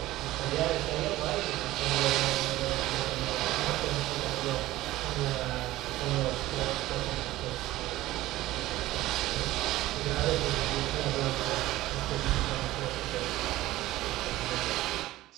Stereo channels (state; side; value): quieter; left; 16.5 dB